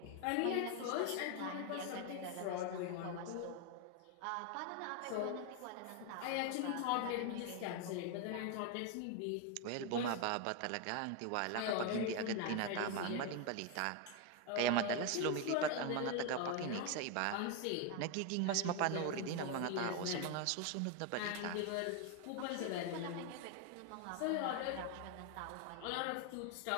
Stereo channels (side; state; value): both; different; correlation 0.01